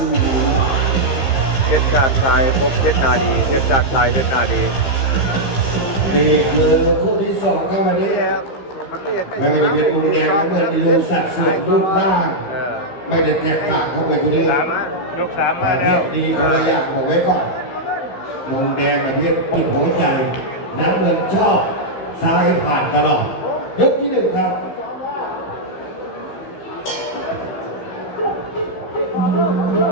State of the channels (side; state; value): right; late; 15 ms